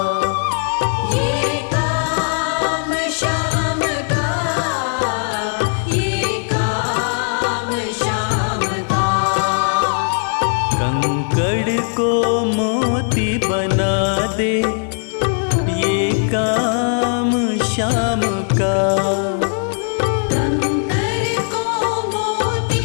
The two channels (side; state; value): right; silent; 58 dB below the other